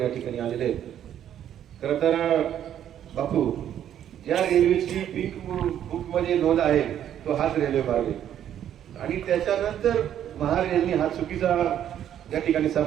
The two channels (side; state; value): left; quieter; 10.4 dB